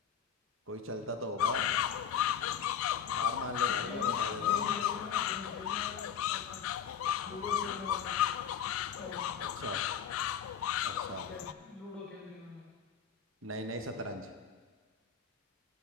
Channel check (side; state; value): right; quieter; 8.1 dB